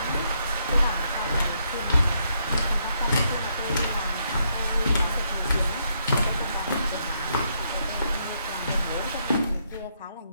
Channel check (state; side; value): inverted; both; correlation -0.76